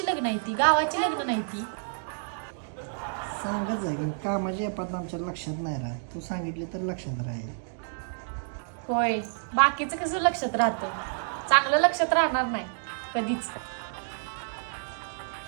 लग्न आहे ती, गावाची लग्न नाही ती. सांगत आहे की कामाची आपण आमच्या लक्षात नाही राहत. तू सांगितले तर लक्षात राहील. होय, बाकीचं कसं लक्षात राहतं, चांगलं लक्षात राहणार नाही कधीच.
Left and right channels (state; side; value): silent; left; digital silence